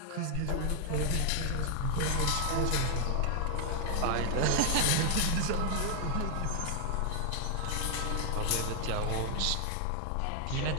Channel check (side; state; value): both; different; correlation 0.00